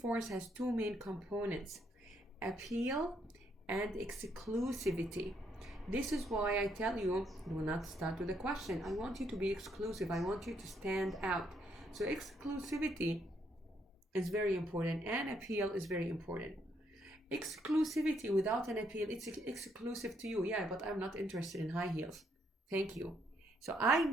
has two main components: appeal and exclusivity. This is why I tell you, do not start with a question. I want you to be exclusive. I want you to stand out. So exclusivity is very important, and appeal is very important. Exclusivity without an appeal, it's exclusive to you. Yeah, but I'm not interested in high heels. Thank you. So I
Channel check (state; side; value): normal; both; correlation 0.74